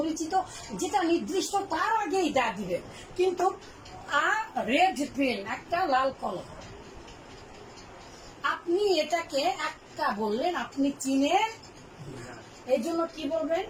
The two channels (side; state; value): both; identical; correlation 1.00